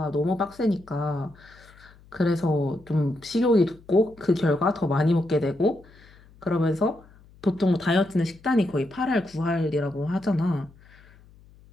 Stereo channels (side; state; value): left; noise; hum, 26 dB below the sound